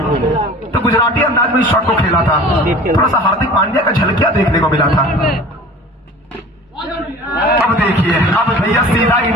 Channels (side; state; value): both; normal; correlation 0.42